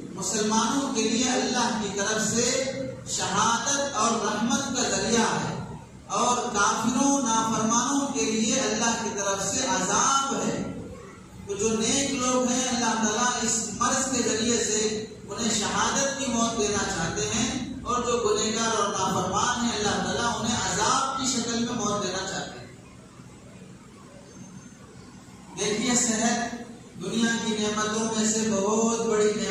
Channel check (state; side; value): identical; both; correlation 1.00